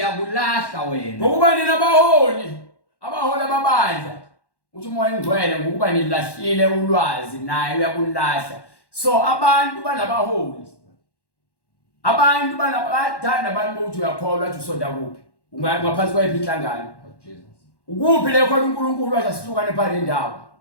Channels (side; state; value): right; late; 1.1 ms